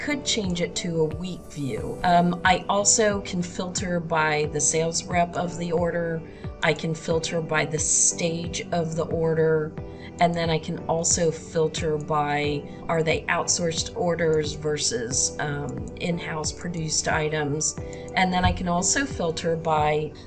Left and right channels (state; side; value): identical; both; correlation 1.00